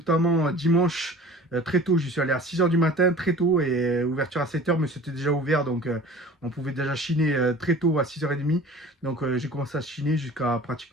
dimanche. Très tôt, j'y suis allé à 6 h du matin, très tôt, et ouverture à 7 h, mais c'était déjà ouvert, donc on pouvait déjà chiner très tôt à 6 h 30. Donc j'ai commencé à chiner jusqu'à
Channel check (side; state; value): both; normal; correlation 0.43